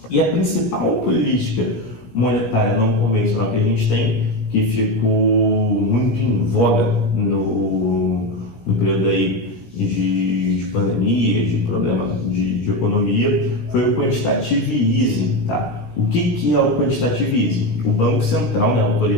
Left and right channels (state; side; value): late; right; 17 ms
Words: E a principal política monetária não convencional que a gente tem, que ficou muito em voga no período aí de pandemia, de problema de economia, foi o quantitative easing, tá? O que é o quantitative easing? O Banco Central, né, a